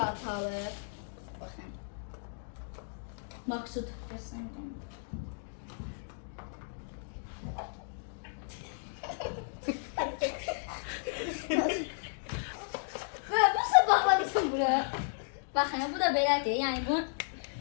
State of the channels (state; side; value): silent; right; digital silence